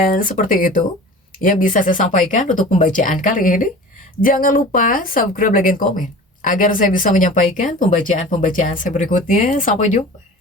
seperti itu yang bisa saya sampaikan untuk pembacaan kali ini. Jangan lupa subscribe, like, dan komen. agar saya bisa menyampaikan pembacaan-pembacaan saya berikutnya. Sampai jumpa.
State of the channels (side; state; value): both; normal; correlation 0.39